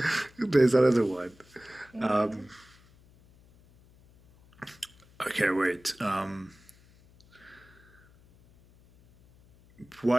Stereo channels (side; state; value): left; noise; hum, 28 dB below the sound